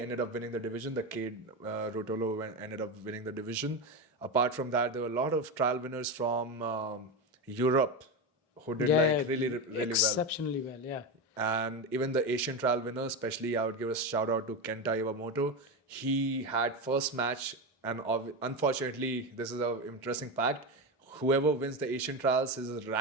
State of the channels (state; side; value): normal; both; correlation 0.16